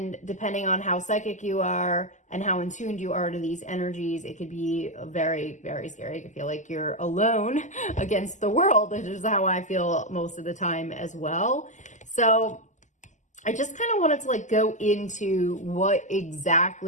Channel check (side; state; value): right; late; 0.35 ms